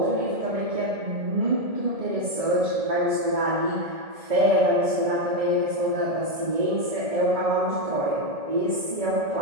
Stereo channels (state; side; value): late; left; 1.7 ms